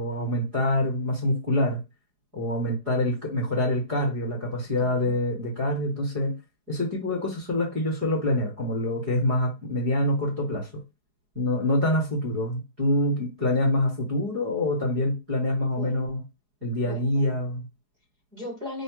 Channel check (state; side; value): late; left; 4.8 ms